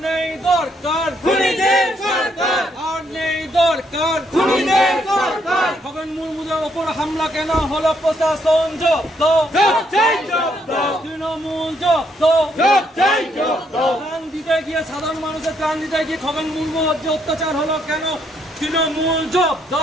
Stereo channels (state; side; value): normal; both; correlation 0.73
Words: নেই দরকার খুনিদের সরকার আর নেই দরকার খুনিদের সরকার খগেন মুর্মুদের ওপর হামলা কেন হলো প্রশাসন জব্দ তৃণমূল জব্দ প্রাণ দিতে গিয়ে সাধারণ মানুষের প্রাণ দিতে গিয়ে খগেন মুর্মুর যে অত্যাচার হলো কেন তৃণমূল জব্দ